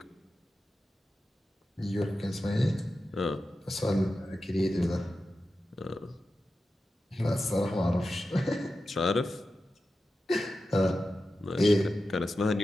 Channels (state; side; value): normal; both; correlation 0.92